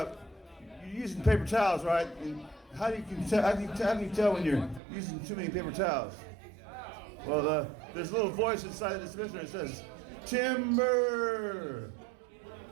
using paper towels, right? And how can you tell when you're using too many paper towels? Well, there's a little voice inside the dispenser that says timber.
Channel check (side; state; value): left; drops out; at 4.8 s